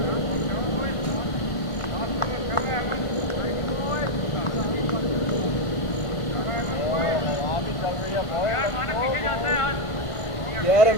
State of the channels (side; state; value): right; late; 1.4 ms